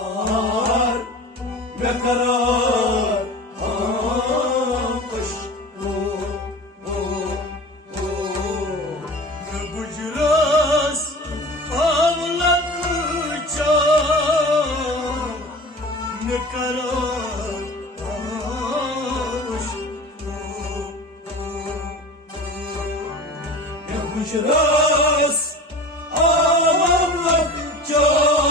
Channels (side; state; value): both; normal; correlation 0.36